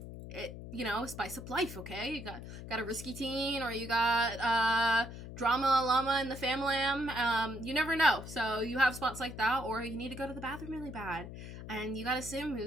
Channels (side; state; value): left; noise; hum, 11 dB below the sound